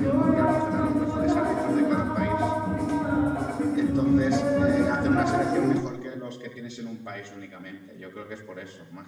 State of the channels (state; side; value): identical; both; correlation 1.00